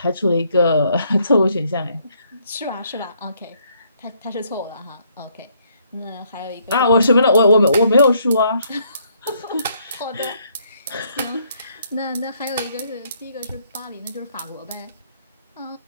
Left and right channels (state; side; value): inverted; both; correlation -0.69